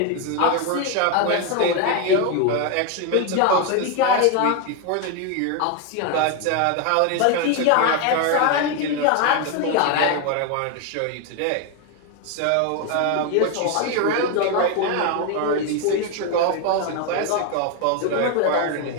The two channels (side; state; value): both; different; correlation 0.01